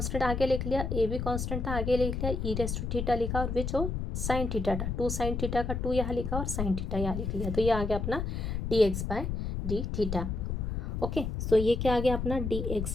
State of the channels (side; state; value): left; noise; rumble, 2 dB below the sound